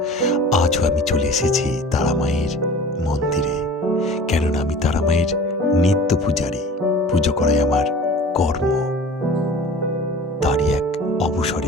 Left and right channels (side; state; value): both; normal; correlation 0.42